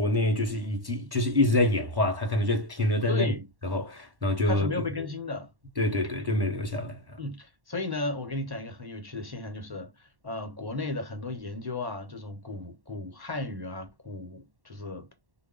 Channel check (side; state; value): left; late; 1.1 ms